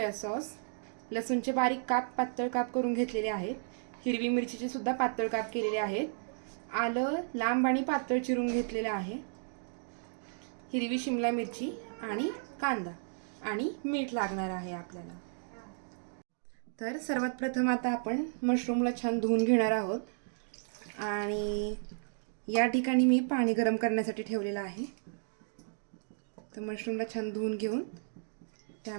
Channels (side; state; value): left; silent; digital silence